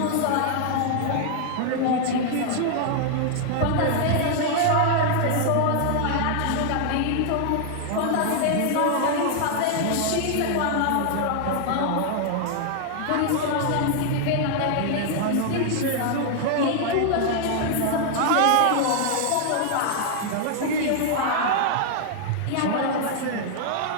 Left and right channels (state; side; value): different; both; correlation 0.00